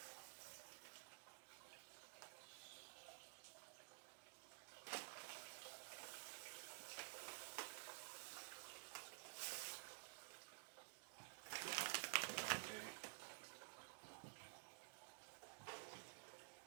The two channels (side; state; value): left; silent; digital silence